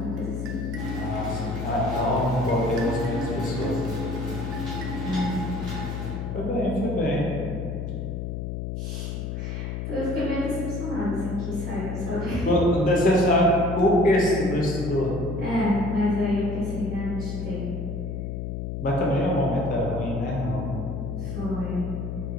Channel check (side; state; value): left; noise; hum, 4 dB below the sound